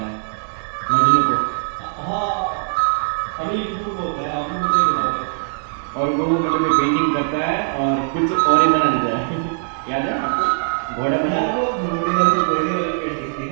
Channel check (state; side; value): silent; left; 61 dB below the other